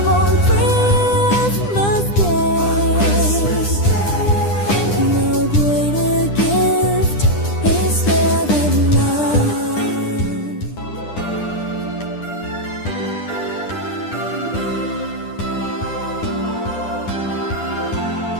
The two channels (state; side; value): late; right; 9.9 ms